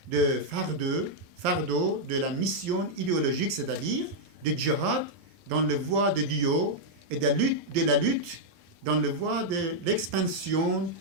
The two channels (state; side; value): late; left; 11 ms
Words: de fardeau de la mission idéologique, c'est-à-dire du djihad dans le voie de Dieu et de la lutte dans le voie de l'expansion